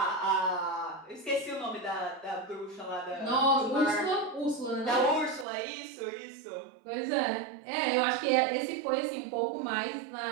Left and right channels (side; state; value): left; drops out; at 5.5 s